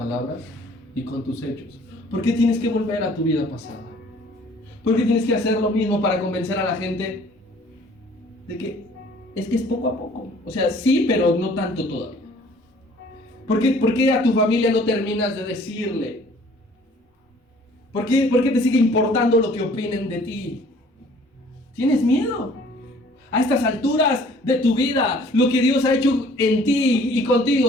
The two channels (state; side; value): normal; both; correlation 0.55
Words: y con tus hechos. ¿Por qué tienes que volver a tu vida pasada? ¿Por qué tienes que hacer lo mismo para convencer a la gente de que es poco a poco? O sea, sí, pero no tanto todavía. ¿Por qué a tu familia no terminas de decirle? ¿Por qué te sigue importando lo que opinen de ti? ¿Tienes miedo? A estas alturas de tu vida, lo que Dios ha hecho en ti y